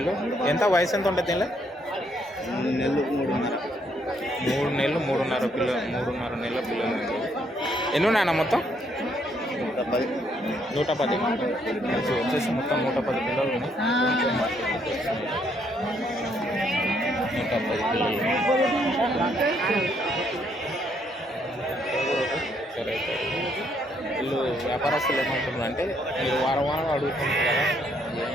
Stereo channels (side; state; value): both; normal; correlation 0.71